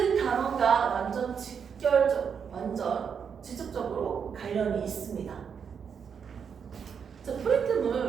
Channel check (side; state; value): left; quieter; 6.9 dB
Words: 단어가 완전 직접적으로 관련이 있습니다. 자,